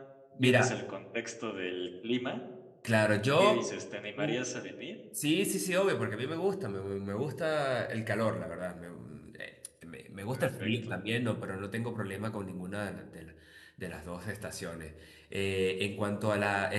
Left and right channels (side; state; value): both; identical; correlation 1.00